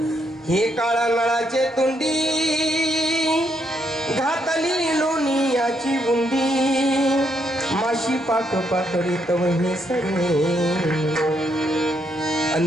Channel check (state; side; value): normal; both; correlation 0.76